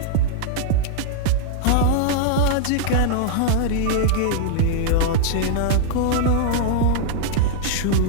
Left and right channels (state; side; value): different; both; correlation -0.01